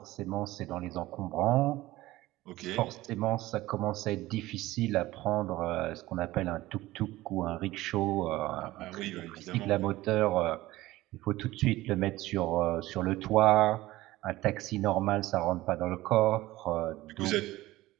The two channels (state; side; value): quieter; left; 17.5 dB